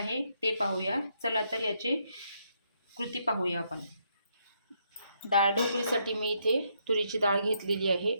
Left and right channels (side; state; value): both; inverted; correlation -0.75